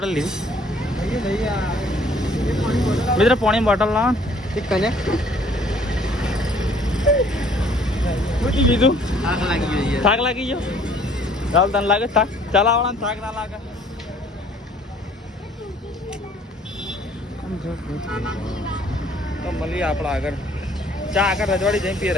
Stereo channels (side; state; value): both; normal; correlation 0.58